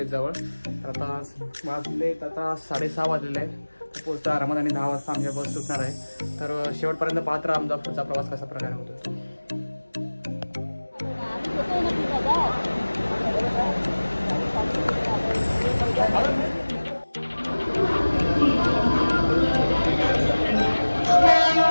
तर आता वाजलेत आता 6:30 वाजलेले आहेत। तर पोहोचता आरामात आणि 10 वाजता आमच्या बस सुटणार आहे। तर शेवटपर्यंत पाहत राहा आमचा पुढचा प्रवास कसा प्रकारे होतो।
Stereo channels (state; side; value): inverted; both; correlation -1.00